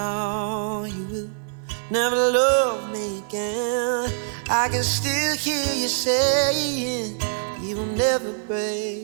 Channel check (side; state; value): left; silent; 63 dB below the other